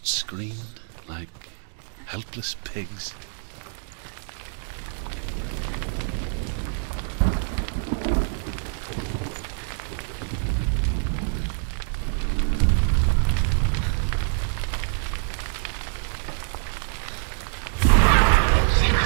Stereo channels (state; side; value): silent; left; 61 dB below the other